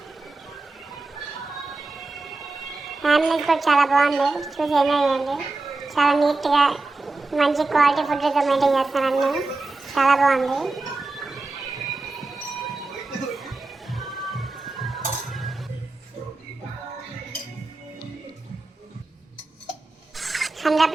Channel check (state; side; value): quieter; left; 3.3 dB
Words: ఫ్యామిలీస్ కూడా చాలా బాగుంది, చూసి ఎంజాయ్ చేయండి. చాలా నీట్గా మంచి క్వాలిటీ ఫుడ్తో మెయింటైన్ చేస్తాను అన్నీ. చాలా బాగుంది.